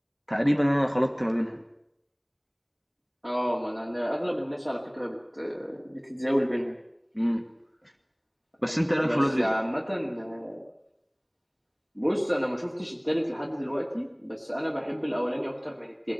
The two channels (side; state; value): both; identical; correlation 1.00